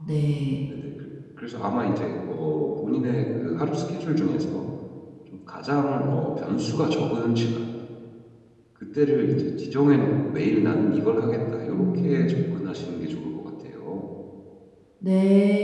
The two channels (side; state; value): both; identical; correlation 1.00